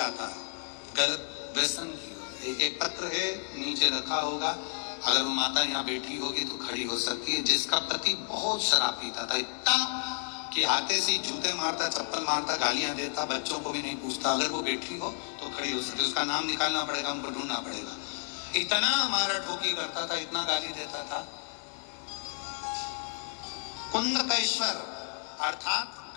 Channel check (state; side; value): silent; right; 57 dB below the other